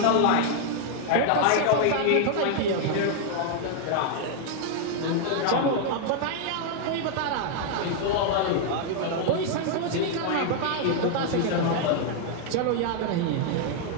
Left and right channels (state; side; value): different; both; correlation 0.00